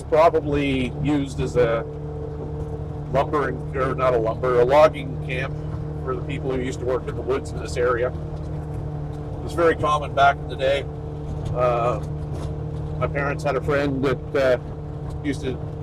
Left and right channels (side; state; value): both; identical; correlation 1.00